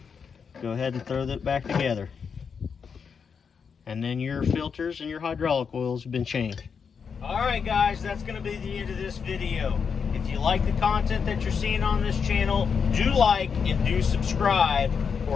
go ahead and throw that back together, and then your filters and your hydraulic oils have been changed. Alright guys, that's going to be the end of this video. If you like the content that you're seeing on this channel, do like and do subscribe,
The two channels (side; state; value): right; quieter; 6.2 dB